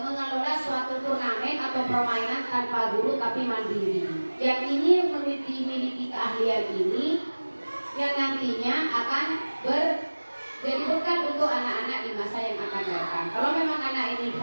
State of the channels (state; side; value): inverted; both; correlation -1.00